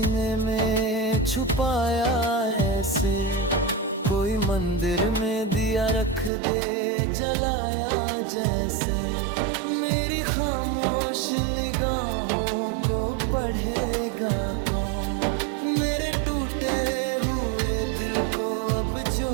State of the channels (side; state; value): left; drops out; at 6.3 s